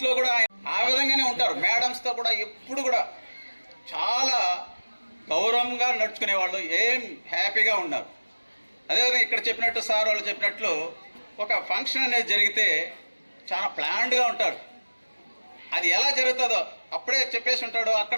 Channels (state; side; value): inverted; both; correlation -1.00